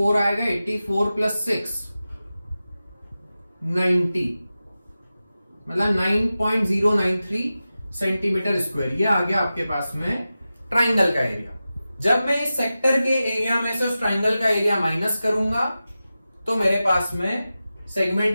आएगा, 84 प्लस 6 90 मतलब 9.093 सेंटीमीटर स्क्वायर। ये आ गया आपके पास में ट्राइंगल का एरिया। जब मैं इस सेक्टर के एरिया में से उस ट्राइंगल का एरिया माइनस करूंगा तो मेरे पास में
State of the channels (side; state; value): both; inverted; correlation -0.94